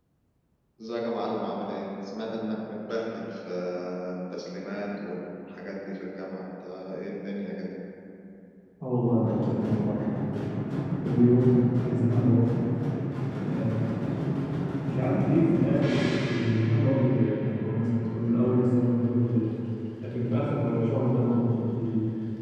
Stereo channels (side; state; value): both; identical; correlation 1.00